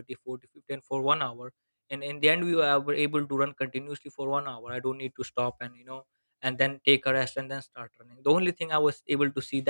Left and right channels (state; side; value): inverted; both; correlation -1.00